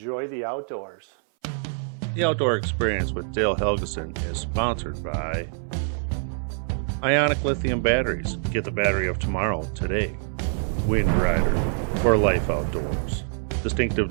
the outdoors. The Outdoor Experience with Dale Helgeson is sponsored by Ionic Lithium Batteries. Get the battery of tomorrow today. Wind Rider for life outdoors. Distinctive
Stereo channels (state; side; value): silent; left; 62 dB below the other